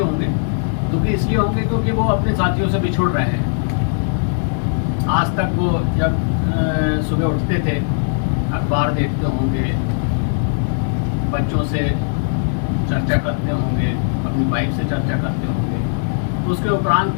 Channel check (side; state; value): right; silent; digital silence